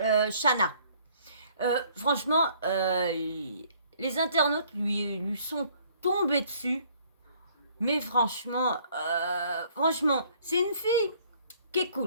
Shana. Franchement, les internautes lui sont tombés dessus. Mais franchement, c'est une fille qui est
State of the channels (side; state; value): both; inverted; correlation -0.60